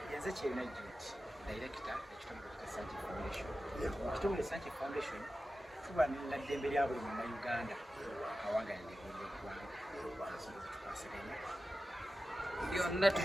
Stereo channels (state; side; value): normal; both; correlation 0.93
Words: Yenze Kyerina George, director ekitongole kya Sankey Foundation. Ekitongole Sankey Foundation tuba n'eddembe lya buli Munnayuganda awangalira byonna